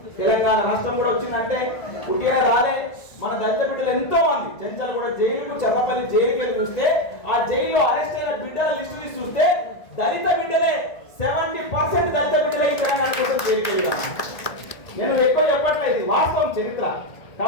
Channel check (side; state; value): right; late; 1.4 ms